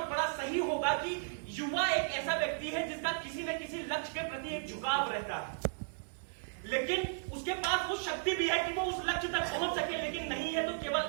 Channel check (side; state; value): left; silent; digital silence